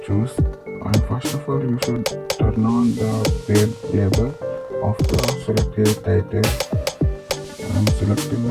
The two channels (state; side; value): identical; both; correlation 1.00